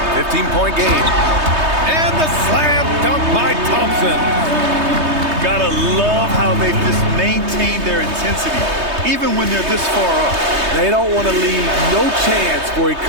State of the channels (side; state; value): left; late; 3.2 ms